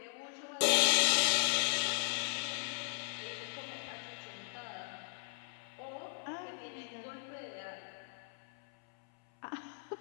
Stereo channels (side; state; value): right; silent; 53 dB below the other